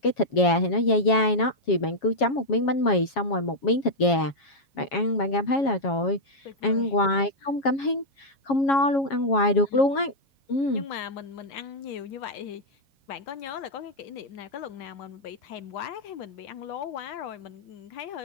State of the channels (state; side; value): late; right; 7.3 ms